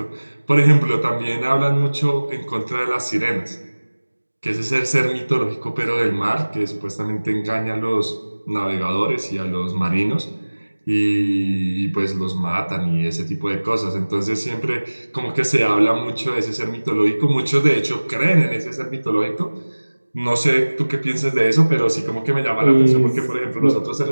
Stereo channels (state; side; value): inverted; both; correlation -1.00